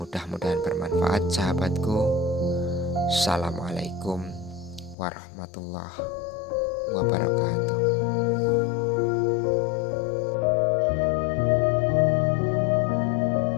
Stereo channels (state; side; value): drops out; right; at 5.0 s